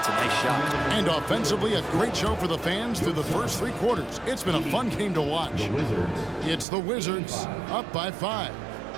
a nice shot. And offensively, a great show for the fans through the first 3 quarters. It's been a fun game to watch. It's the Wizards up by 5.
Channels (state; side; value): drops out; left; at 6.7 s